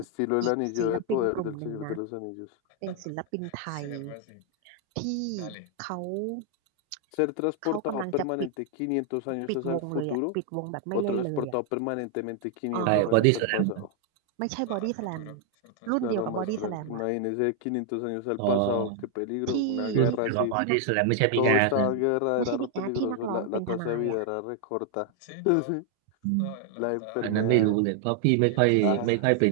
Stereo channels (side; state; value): both; different; correlation 0.00